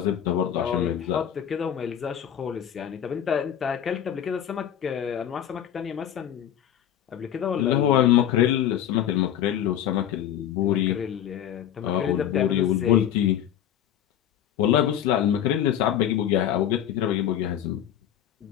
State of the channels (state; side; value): quieter; right; 10.3 dB